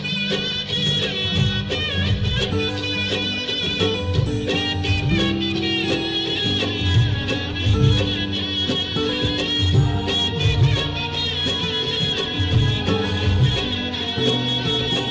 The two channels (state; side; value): identical; both; correlation 1.00